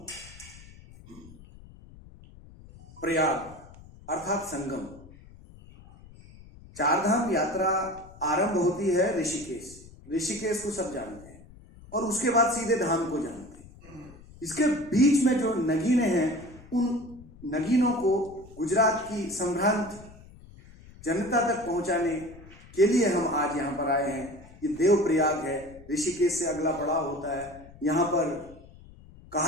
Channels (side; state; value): left; noise; rumble, 21 dB below the sound